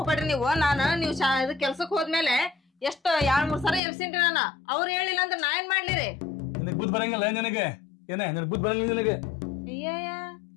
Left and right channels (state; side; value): drops out; right; at 3.8 s